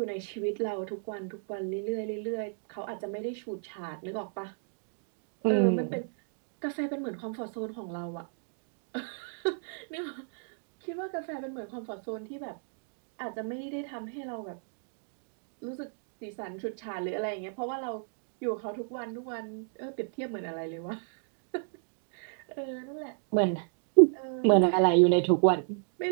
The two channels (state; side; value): silent; left; digital silence